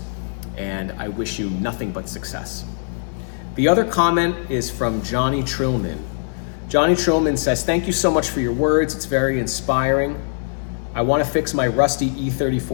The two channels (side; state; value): right; silent; digital silence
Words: and I wish you nothing but success. The other comment is from Johnny Trillman. Johnny Trillman says, "Thank you so much for your words. It's very inspiring. I want to fix my rusty